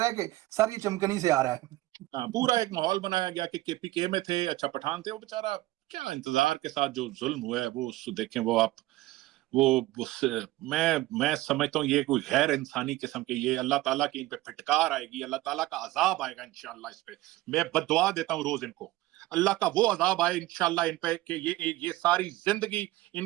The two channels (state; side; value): quieter; left; 17.7 dB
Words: ہے کہ سر یہ چمکنی سے آ رہا ہے. ہاں, پورا ایک ماحول بنایا گیا کہ کے پی کے میں تھے, اچھا پٹھان تھے. وہ بیچارہ کیا انتظار کے ساتھ جو ظلم ہوئے وہ دیکھیں. وہ آپ میں سمجھتا ہوں یہ کوئی غیر انسانی قسم کے, یہ اللہ تعالیٰ کی ان پہ پھٹکار آئے گی, اللہ تعالیٰ کا عذاب آئے گا انشاءاللہ اس پہ. میں بددعا دیتا ہوں روز ان کو, اللہ کا وہ عذاب آئے انشاءاللہ ان پہ کہ یہ ساری زندگی ان